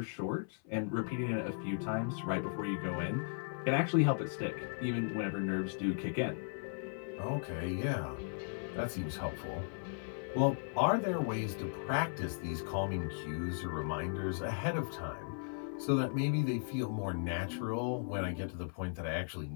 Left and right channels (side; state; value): right; silent; 53 dB below the other